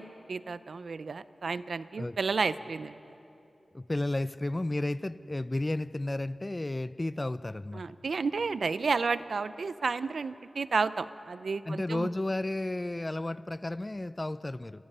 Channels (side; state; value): both; normal; correlation 0.94